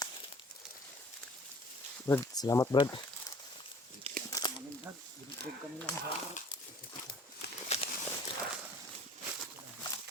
Brad, salamat Brad. Amin dag, ibig kami lang sa.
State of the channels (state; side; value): normal; both; correlation 0.50